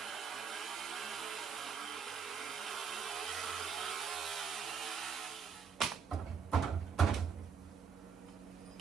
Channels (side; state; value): left; quieter; 6.4 dB